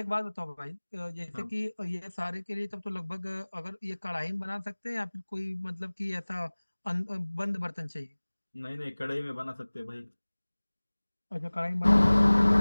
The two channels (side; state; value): both; inverted; correlation -1.00